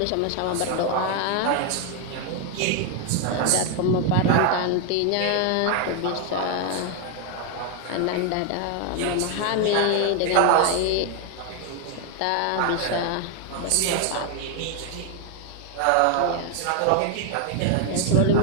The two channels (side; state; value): both; different; correlation 0.01